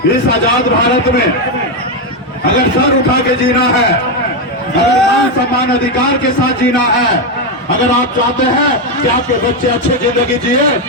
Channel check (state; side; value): normal; both; correlation 0.07